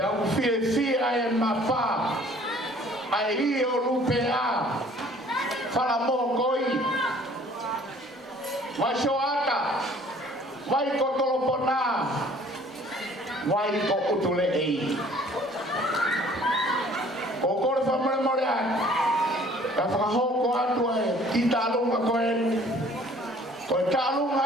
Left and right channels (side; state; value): both; normal; correlation 0.54